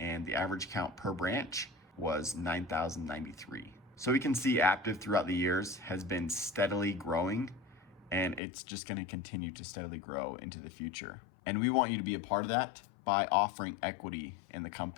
the average count per branch was 9,093. So we can see Aptive throughout the years has been steadily growing, and it's just going to continue to steadily grow into the future. And we want you to be a part of that by offering equity in the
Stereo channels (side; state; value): right; drops out; at 8.4 s